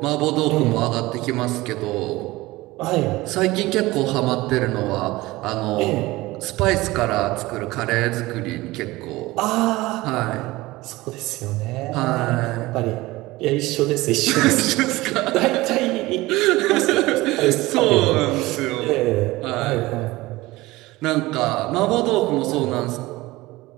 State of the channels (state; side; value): quieter; left; 19.7 dB